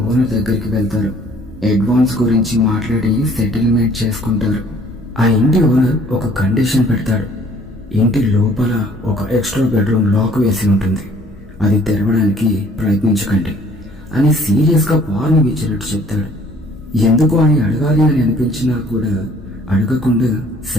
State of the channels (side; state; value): left; noise; hum, 24 dB below the sound